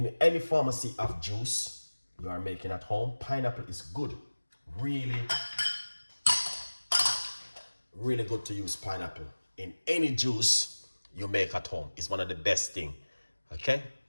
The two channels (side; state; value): both; inverted; correlation -1.00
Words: pharmacy of juice you are making at home, pineapple is good. Really good to use pineapple in any juice you make at home. It's one of the best thing, okay?